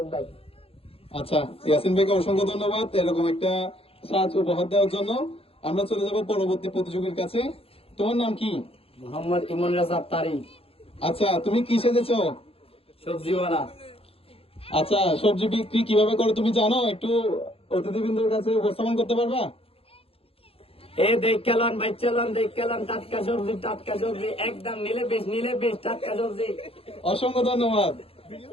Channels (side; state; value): right; late; 0.27 ms